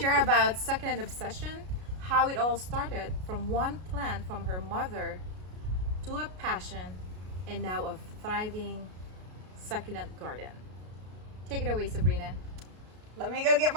about Succulent Obsession, how it all started from one plant from her mother to a passion, and now a thriving succulent garden. Take it away, Sabrina. Let me go get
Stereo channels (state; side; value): late; left; 33 ms